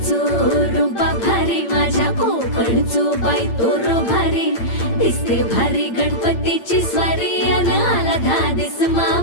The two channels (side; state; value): right; late; 8.8 ms